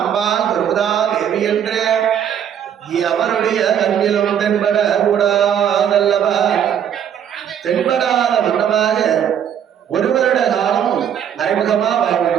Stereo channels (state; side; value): quieter; left; 9.1 dB